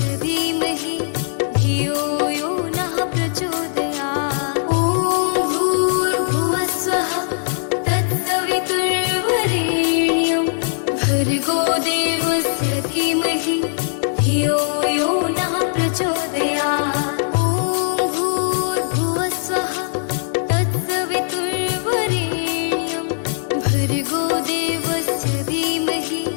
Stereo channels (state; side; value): silent; right; 64 dB below the other